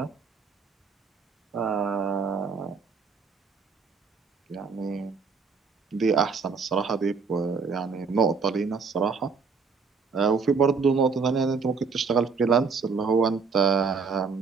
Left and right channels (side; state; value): left; quieter; 5.3 dB